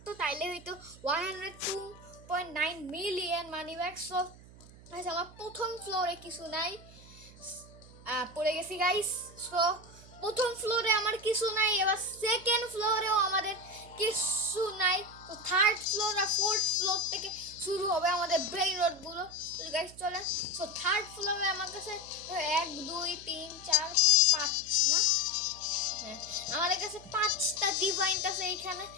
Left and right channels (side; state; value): right; noise; hum, 20 dB below the sound